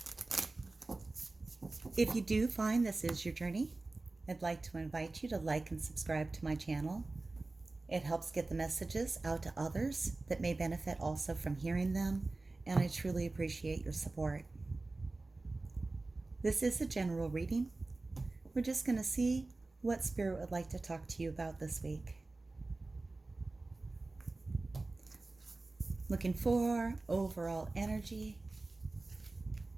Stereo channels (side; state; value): left; quieter; 3.2 dB